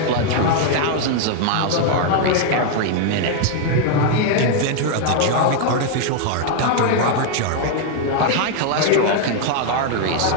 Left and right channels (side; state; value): both; different; correlation 0.00